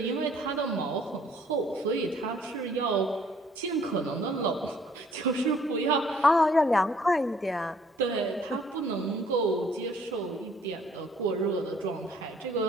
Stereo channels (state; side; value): normal; both; correlation 0.61